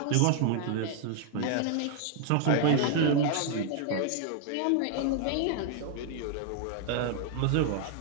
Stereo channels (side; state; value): both; different; correlation 0.00